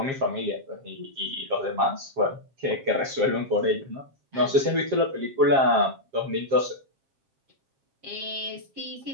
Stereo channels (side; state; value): left; late; 7.5 ms